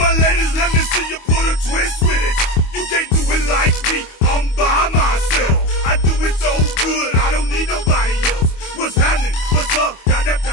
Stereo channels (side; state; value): right; late; 25 ms